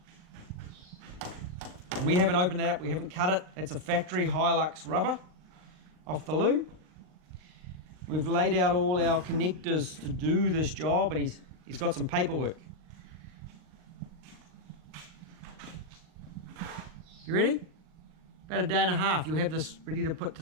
We haven't opened that up, we haven't cut it. It's a factory Hilux rubber off the loom. We've laid out all our connectors to do this job, and he's got some paperwork. You ready? About a day and a half, you'll have this ready to put to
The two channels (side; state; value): left; late; 39 ms